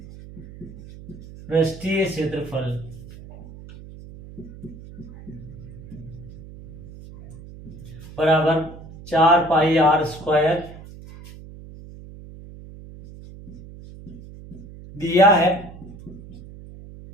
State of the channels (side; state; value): right; noise; hum, 16 dB below the sound